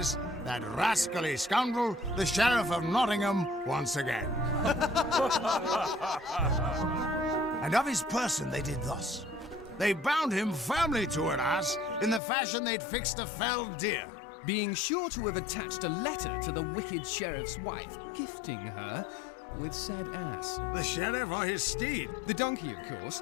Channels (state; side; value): drops out; right; at 12.2 s